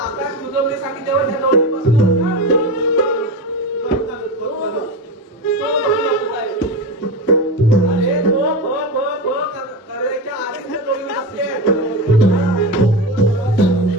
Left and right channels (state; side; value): normal; both; correlation 0.20